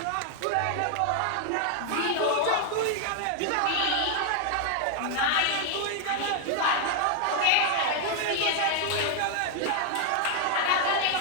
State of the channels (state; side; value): different; both; correlation 0.00